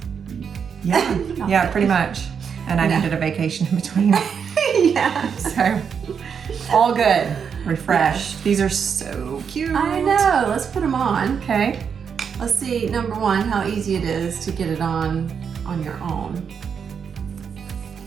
Yeah. Yeah, pretty much. And I needed a vacation in between. Yeah. So, all good. Refreshed. These are so cute. I know. Let's put them on. Okay. Let's see, number one, how easy it is to get it on your own.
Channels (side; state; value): left; quieter; 6.8 dB